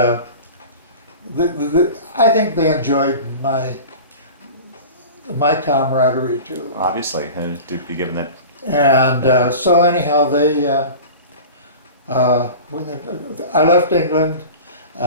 I think they enjoyed my camaraderie too. Obviously, to be given that. And so anyhow, I left England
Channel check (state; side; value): inverted; both; correlation -0.36